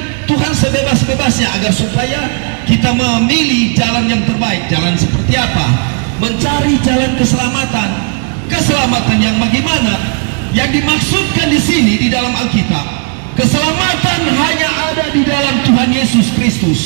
Tuhan sebebas-bebasnya agar supaya kita memilih jalan yang terbaik. Jalan seperti apa? Mencari jalan keselamatan. Keselamatan yang bagaimana? Yang dimaksudkan di sini di dalam Alkitab, keselamatan hanya ada di dalam Tuhan Yesus Kristus.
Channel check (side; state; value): left; quieter; 38.0 dB